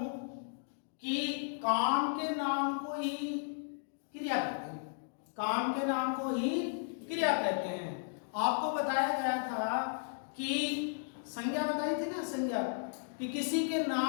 कि काम के नाम को ही क्रिया कहते हैं। काम के नाम को ही क्रिया कहते हैं। आपको बताया गया था कि संज्ञा बताई थी ना, संज्ञा, कि किसी के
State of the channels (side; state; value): right; silent; digital silence